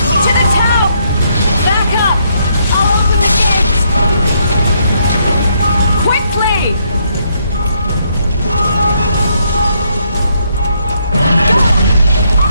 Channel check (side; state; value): both; inverted; correlation -0.73